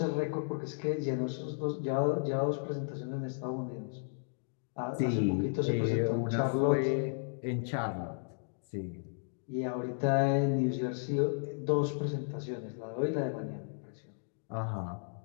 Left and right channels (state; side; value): silent; right; digital silence